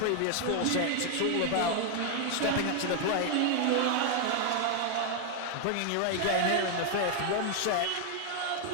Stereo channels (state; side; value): different; both; correlation 0.00